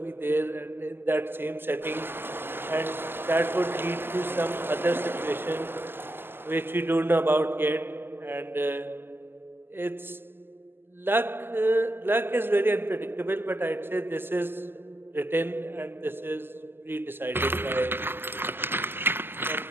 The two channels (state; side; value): late; left; 0.10 ms